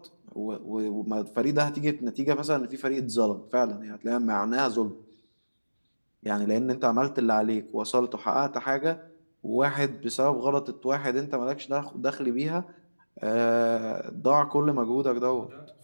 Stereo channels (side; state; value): both; inverted; correlation -1.00